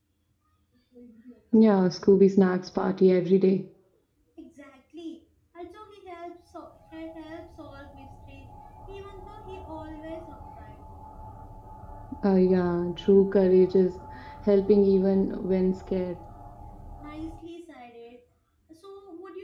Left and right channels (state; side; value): identical; both; correlation 1.00